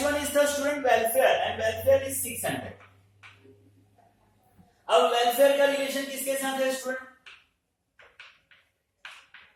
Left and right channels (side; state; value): both; identical; correlation 1.00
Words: one is the student welfare, and welfare is 600। अब वेलफेयर का रिलेशन किसके साथ है स्टूडेंट,